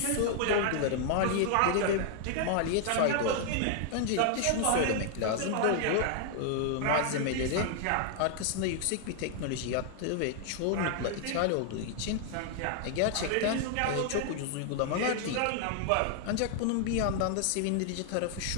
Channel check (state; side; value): different; both; correlation 0.00